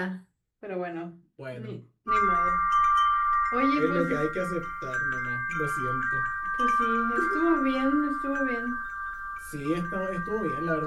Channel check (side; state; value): both; identical; correlation 1.00